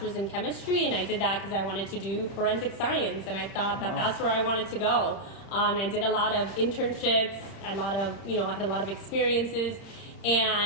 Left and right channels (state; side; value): late; right; 30 ms